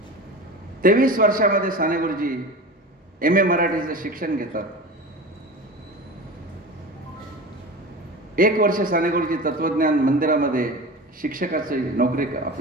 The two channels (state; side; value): normal; both; correlation 0.31